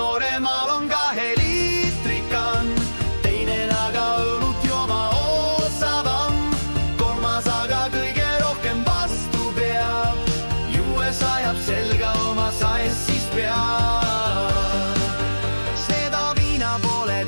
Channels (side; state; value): both; inverted; correlation -1.00